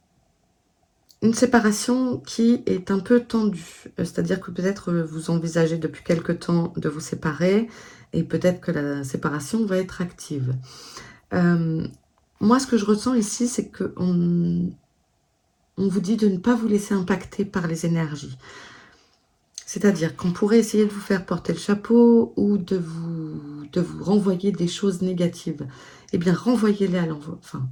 séparation qui est un peu tendue. C'est-à-dire que peut-être vous envisagez depuis quelque temps de vous séparer et peut-être que la séparation va être active. Moi, ce que je ressens ici, c'est qu'on vous dit de ne pas vous laisser impacter par les énergies. C'est-à-dire qu'on pourrait essayer de vous faire porter le chapeau ou de vous renvoyer des choses négatives. Eh bien, renvoyez-les à l'envoyeur, enfin,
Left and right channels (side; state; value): both; identical; correlation 1.00